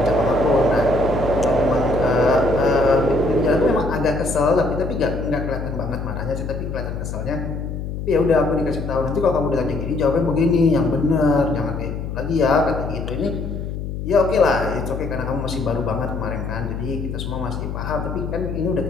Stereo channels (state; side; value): noise; left; hum, 5 dB below the sound